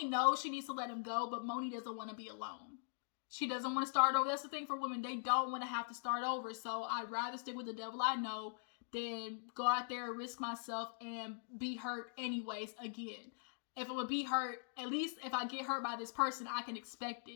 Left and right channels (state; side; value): silent; right; digital silence